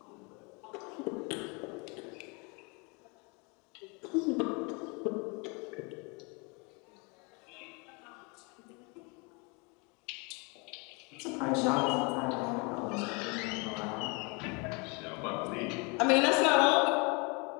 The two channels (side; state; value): right; quieter; 30.4 dB